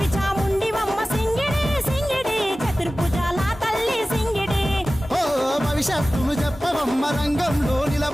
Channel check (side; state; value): both; normal; correlation 0.96